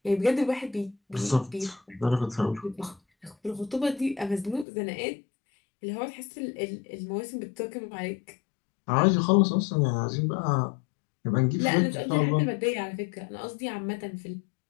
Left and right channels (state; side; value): drops out; right; at 4.7 s